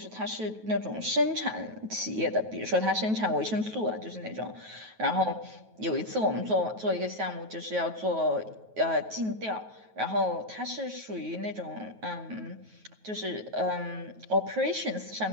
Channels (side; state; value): left; late; 9.3 ms